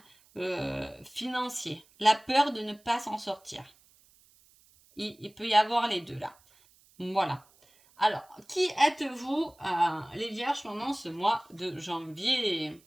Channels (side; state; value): right; noise; hiss, 30 dB below the sound